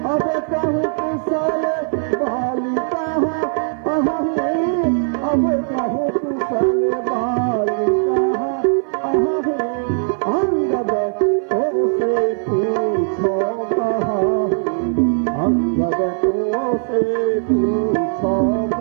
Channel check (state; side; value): silent; left; 58 dB below the other